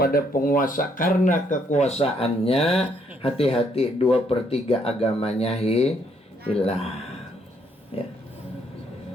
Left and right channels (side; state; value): both; normal; correlation 0.70